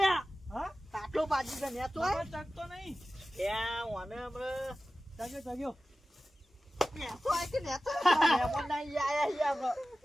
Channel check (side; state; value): both; normal; correlation 0.96